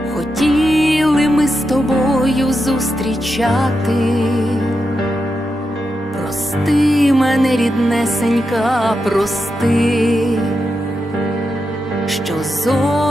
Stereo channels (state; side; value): normal; both; correlation 0.87